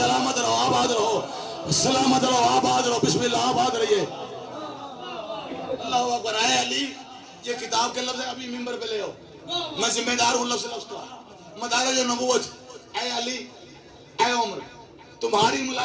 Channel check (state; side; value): identical; both; correlation 1.00